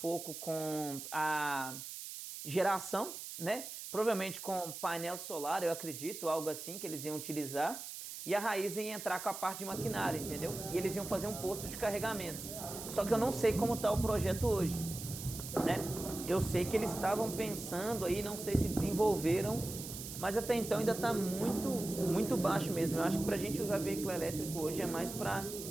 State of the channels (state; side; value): noise; right; hiss, 9 dB below the sound